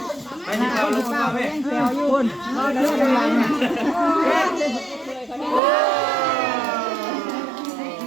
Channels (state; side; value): drops out; left; at 5.6 s